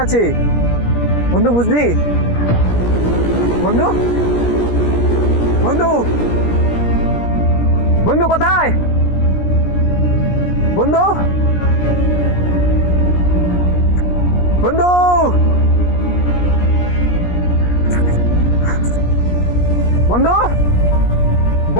আছে বন্ধু, বুঝলি? বন্ধু বন্ধু বন্ধু কোথায় বন্ধু? বন্ধু বন্ধু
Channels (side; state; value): right; late; 17 ms